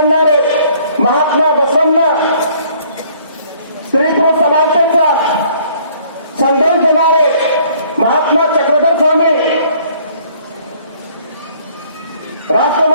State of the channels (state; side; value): inverted; both; correlation -0.59